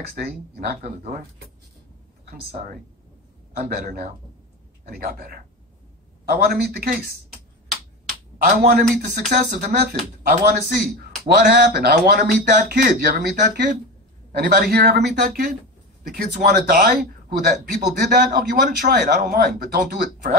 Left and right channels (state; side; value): normal; both; correlation 0.23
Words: day, he knocked on the door. I'm sorry. I'm better now. And he got better. I want to meet the case. I want to meet the success of the method. I want to see what happened. I want to meet that kid. You ever meet that kid? Anybody here ever meet that kid? The kids who want to die? People did that? Oh, you want to try it. I don't mind. But don't do it